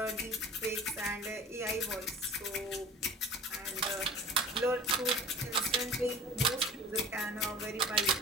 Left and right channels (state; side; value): normal; both; correlation 0.41